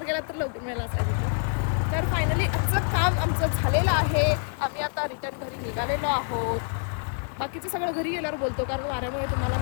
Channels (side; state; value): right; silent; 60 dB below the other